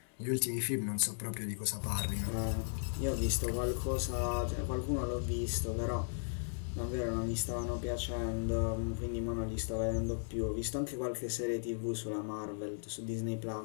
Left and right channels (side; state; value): right; silent; digital silence